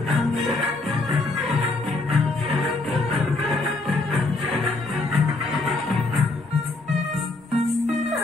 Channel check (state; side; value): quieter; right; 3.2 dB